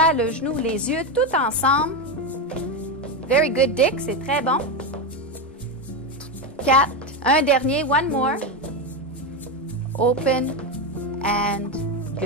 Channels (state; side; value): normal; both; correlation 0.11